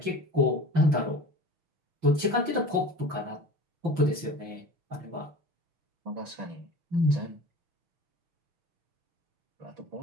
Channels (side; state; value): left; late; 5.9 ms